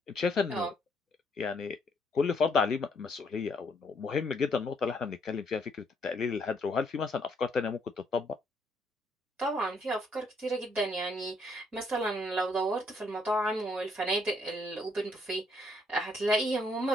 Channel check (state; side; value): normal; both; correlation 0.70